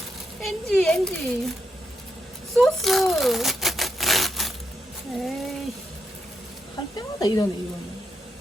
엔지 소스. 에이, 할 때마다 이러네. 이거는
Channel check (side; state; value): both; normal; correlation 0.81